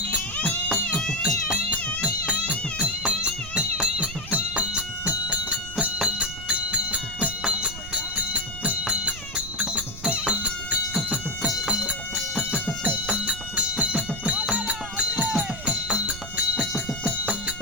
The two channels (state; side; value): noise; right; rumble, 12 dB below the sound